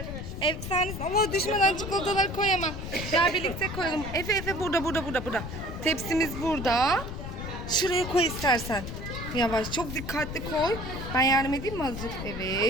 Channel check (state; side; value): noise; left; rumble, 7 dB below the sound